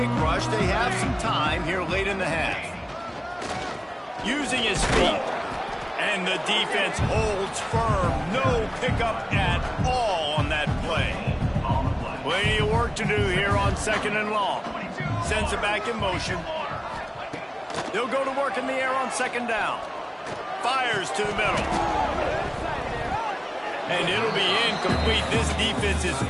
rush. They have some time here late in the half. Using his feet. And the defense holds firm. No pickup at all on that play. Plenty of work to do here on 2nd and long. Sends it back in motion. They'll go to work in the air on 2nd down. Fires to the middle. And it'll be incomplete. This defense is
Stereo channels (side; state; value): both; identical; correlation 1.00